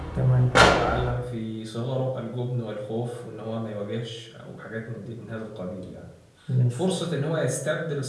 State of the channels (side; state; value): both; identical; correlation 1.00